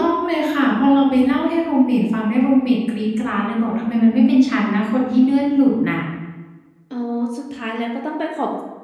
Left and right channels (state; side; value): identical; both; correlation 1.00